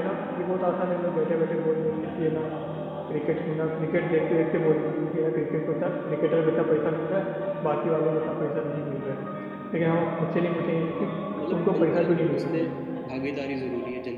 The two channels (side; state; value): both; identical; correlation 1.00